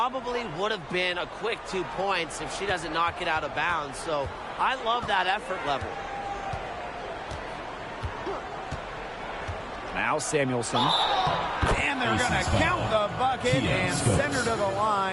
would have been a quick 2 points if she doesn't knock it out of bounds. So I love that effort level. Now Samuelson. And they're going to count the bucket and send her to the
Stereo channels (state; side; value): identical; both; correlation 1.00